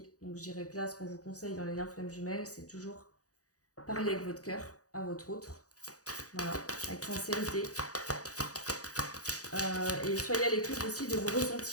Donc, je dirais que là, ce qu'on vous conseille dans les liens flamme jumelle, c'est toujours parler avec votre cœur à votre autre. Voilà, avec sincérité. Et soyez à l'écoute aussi de vos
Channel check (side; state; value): right; late; 0.67 ms